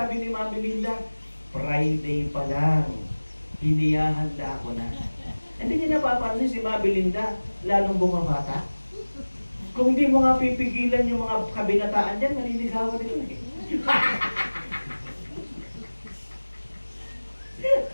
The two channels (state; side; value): inverted; both; correlation -1.00